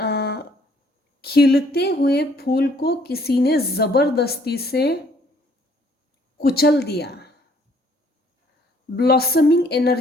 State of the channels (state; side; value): normal; both; correlation 0.63